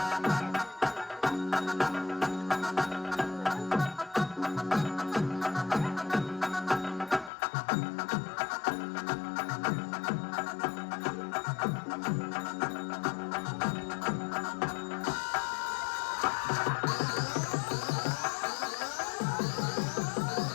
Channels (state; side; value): drops out; right; at 7.3 s